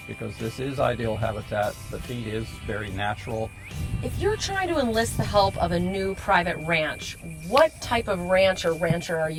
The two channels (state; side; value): identical; both; correlation 1.00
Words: because this is ideal habitat. The feed is very natural. If you're trying to enlist the help of a new private ranch, what type of ranch or rancher are